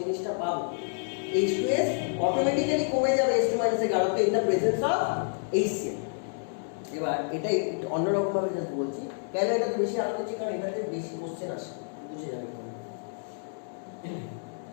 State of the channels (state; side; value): silent; right; digital silence